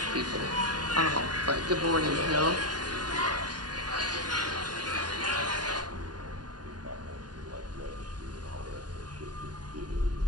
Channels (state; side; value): late; left; 0.70 ms